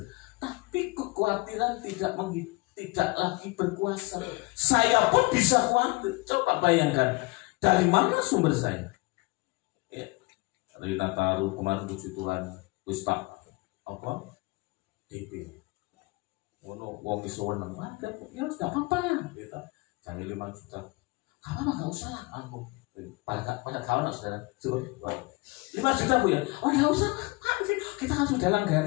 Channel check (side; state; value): right; quieter; 24.2 dB